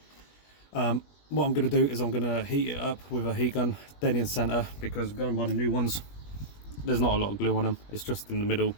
What I'm going to do is I'm going to heat it up with a heat gun dead in centre, because going by the new ones, there's not a lot of glue on them. It's just in the middle,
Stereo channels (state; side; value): late; right; 21 ms